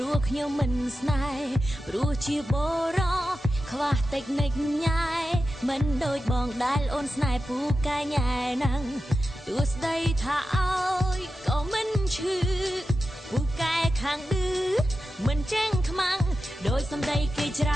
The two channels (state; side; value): normal; both; correlation 0.91